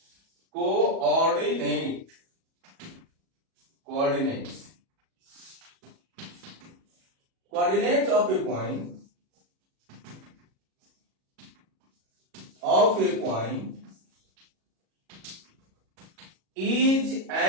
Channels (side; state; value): left; late; 37 ms